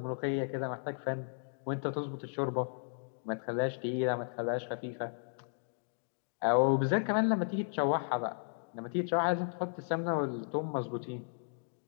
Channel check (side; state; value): right; silent; digital silence